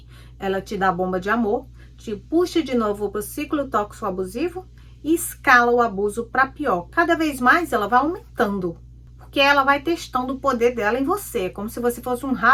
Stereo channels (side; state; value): both; identical; correlation 1.00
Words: Ela te dá bomba de amor, te puxa de novo para o ciclo tóxico abusivo e escala o abuso para pior. Cada vez mais ela vai aumentando, porque ela vai testando o poder dela em você, como se você fosse um